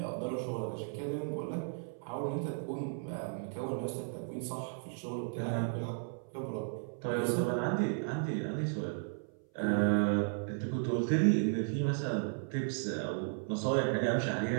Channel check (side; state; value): left; silent; 55 dB below the other